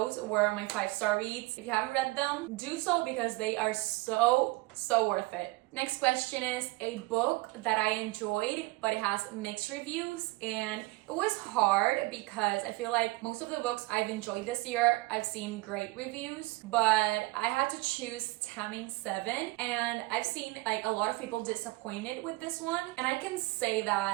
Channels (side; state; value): left; quieter; 22.6 dB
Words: were my 5 star reads. If you haven't read them, do so because they are so worth it. Next question is a book that I enjoyed, but it has mixed reviews, and it was hard because I feel like most of the books I've enjoyed this year, I've seen great reviews, but I had to choose Taming 7, and I've seen like a lot of people disappointed with this one, and I can say